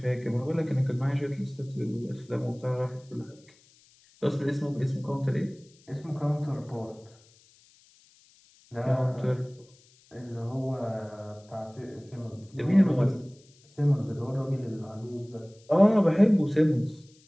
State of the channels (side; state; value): left; noise; hiss, 29 dB below the sound